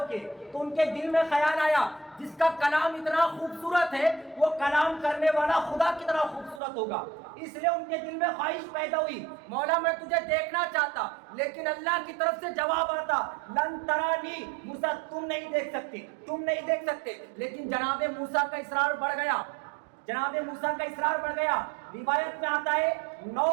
کے، تو ان کے دل میں خیال آیا جس کا کلام اتنا خوبصورت ہے وہ کلام کرنے والا خدا کتنا خوبصورت ہوگا۔ اس لیے ان کے دل میں خواہش پیدا ہوئی، مولا میں تجھے دیکھنا چاہتا، لیکن اللہ کی طرف سے جواب آتا لن ترانی، موسیٰ تم نہیں دیکھ سکتے، تم نہیں دیکھ سکتے۔ لیکن جناب موسیٰ کا اصرار بڑھ گیا، جناب موسیٰ کا اصرار بڑھ گیا۔ روایت میں آتا ہے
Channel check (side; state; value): left; drops out; at 6.6 s